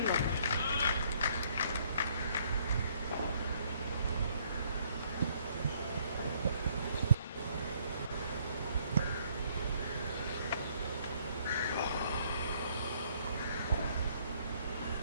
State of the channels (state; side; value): inverted; both; correlation -0.65